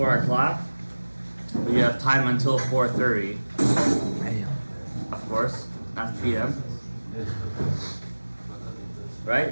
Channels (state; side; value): inverted; both; correlation -1.00